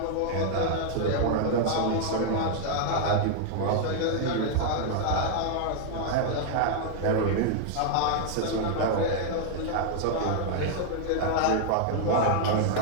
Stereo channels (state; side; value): different; both; correlation 0.00